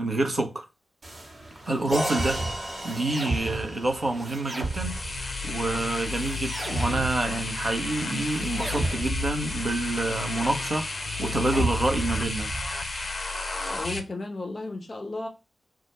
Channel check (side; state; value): both; normal; correlation 0.84